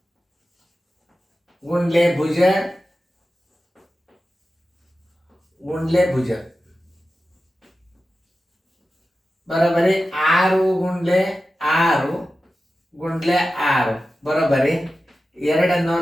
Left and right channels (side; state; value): both; normal; correlation 0.93